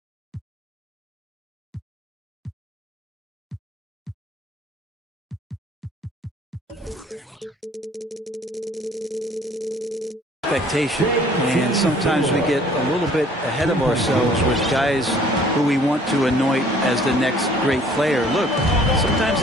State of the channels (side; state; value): both; normal; correlation 0.55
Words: expectation, and sometimes we get a little bit ahead of ourselves with guys who we want to anoint as the next great player. Look, sometimes